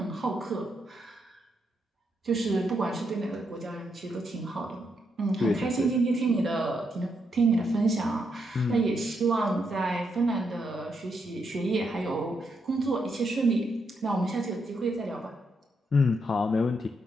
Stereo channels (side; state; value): both; normal; correlation 0.79